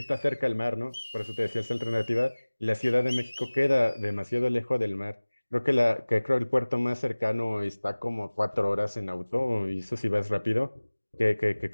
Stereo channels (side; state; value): both; inverted; correlation -1.00